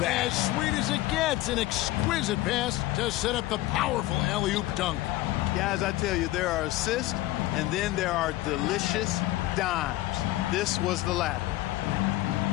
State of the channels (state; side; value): quieter; right; 16.9 dB